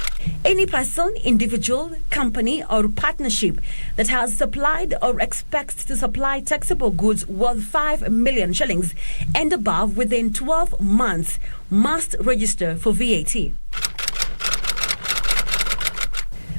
Any person, individual, company or partnership that has supplied or expects to supply taxable goods worth 5 million shillings and above within 12 months must register for VAT.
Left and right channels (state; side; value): inverted; both; correlation -1.00